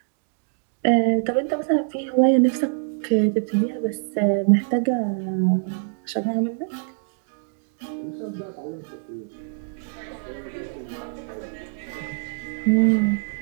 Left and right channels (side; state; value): left; silent; digital silence